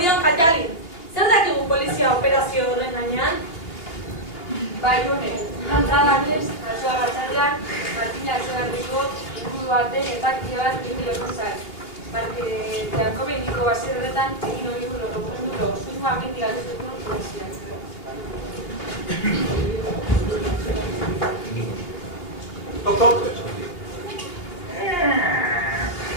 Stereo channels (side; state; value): right; late; 2.9 ms